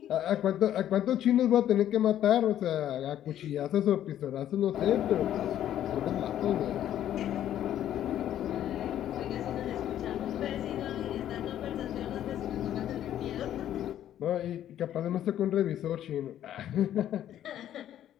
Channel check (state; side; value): quieter; right; 11.4 dB